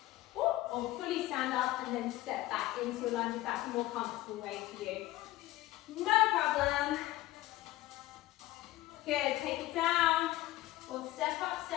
or fully stand up and then step back into a lunge if that's a more comfortable way for you. No problem. Good, take it down, or step up,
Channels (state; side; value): quieter; right; 16.6 dB